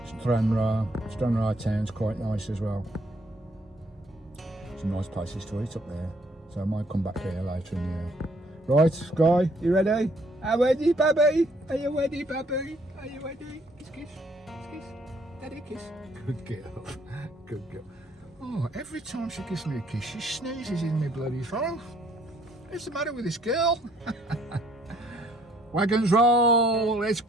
Stranraer town's quite nice as well. Some nice places to eat up there, so I might come back here later in the year. Right, Skye, you ready? Are you ready, baby? Are you ready, baby? Are you ready? Kiss, kiss, kiss, daddy kiss. Good girl, good girl. Oh, every time she gives me a kiss, she sneezes in my bloody throat. What's the matter with this girl? Wagons roll, let's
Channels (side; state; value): both; normal; correlation 0.65